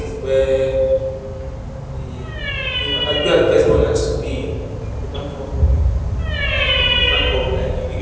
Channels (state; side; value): identical; both; correlation 1.00